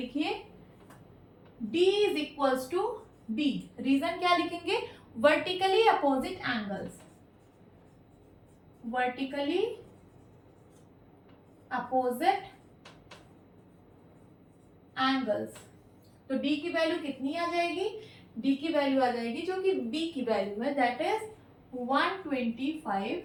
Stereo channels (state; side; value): identical; both; correlation 1.00